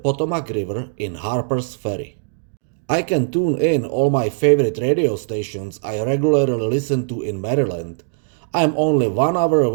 River in Harper's Ferry. I can tune in all my favorite radio stations I regularly listen to in Maryland. I am only 1 hour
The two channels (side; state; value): left; silent; digital silence